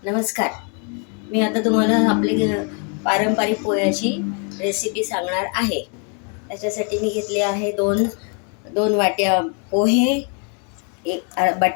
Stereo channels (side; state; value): right; quieter; 39.2 dB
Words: नमस्कार. मी आता तुम्हाला आपली पारंपरिक पोह्याची रेसिपी सांगणार आहे. त्याच्यासाठी मी घेतले आहे दोन वाट्या पोहे, एक